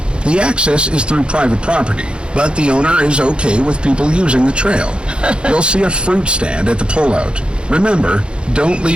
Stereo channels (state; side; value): late; left; 0.055 ms